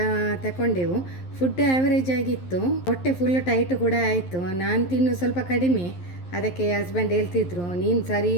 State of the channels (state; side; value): late; right; 11 ms